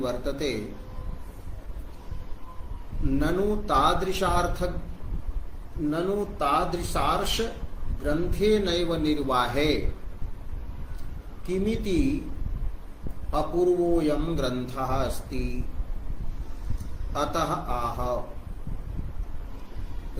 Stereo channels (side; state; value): both; identical; correlation 1.00